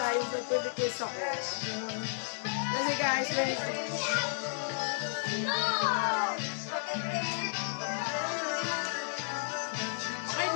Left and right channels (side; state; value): right; silent; digital silence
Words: yung pwede case ako. Kasi guys, okay